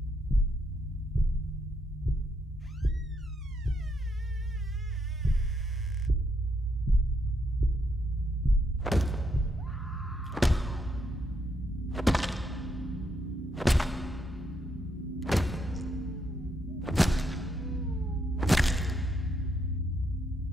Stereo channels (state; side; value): normal; both; correlation 0.77